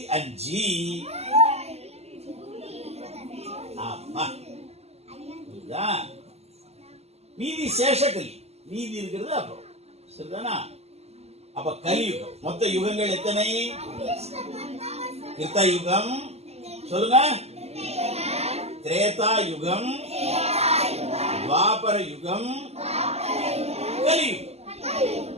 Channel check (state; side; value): late; left; 0.30 ms